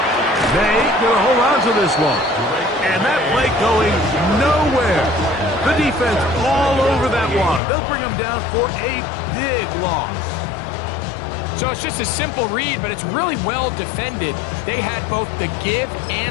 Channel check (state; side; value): drops out; right; at 7.6 s